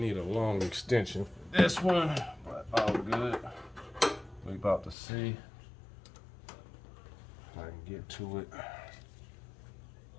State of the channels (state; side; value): drops out; right; at 5.0 s